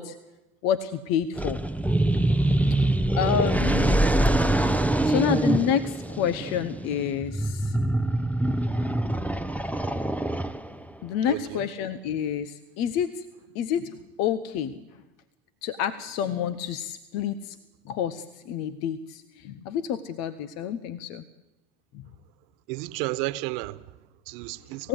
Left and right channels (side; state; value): both; normal; correlation 0.59